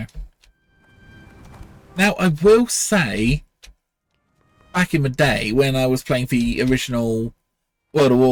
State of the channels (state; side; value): identical; both; correlation 1.00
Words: Now, I will say, back in the day when I was playing the original World of